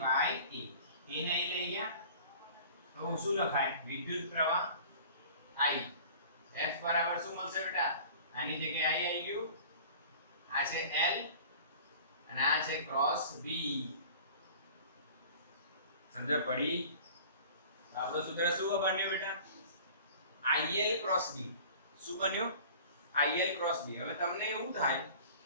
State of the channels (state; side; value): inverted; both; correlation -0.44